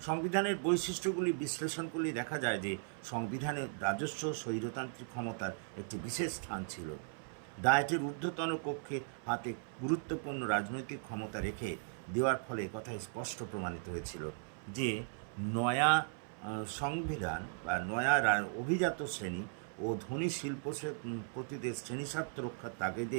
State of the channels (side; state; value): left; silent; 53 dB below the other